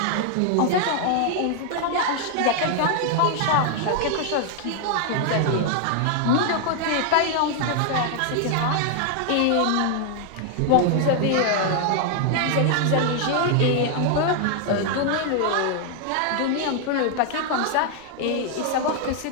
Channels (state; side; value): different; both; correlation 0.00